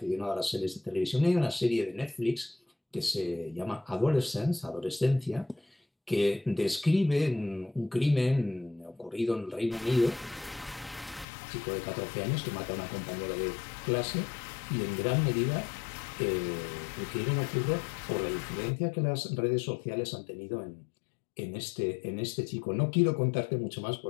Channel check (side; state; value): right; drops out; at 11.2 s